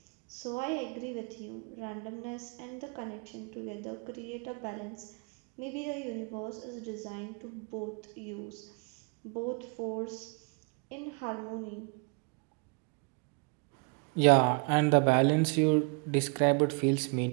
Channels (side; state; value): left; quieter; 35.6 dB